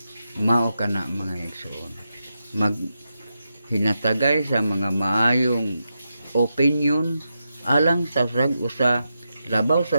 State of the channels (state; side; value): inverted; both; correlation -0.87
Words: Mao kana mga igsoon, maghinatagay sa mga maayong opinion alang sa rag-usa labaw